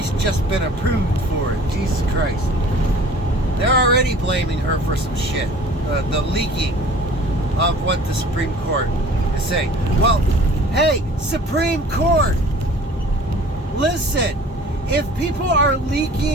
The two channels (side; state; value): both; normal; correlation 0.47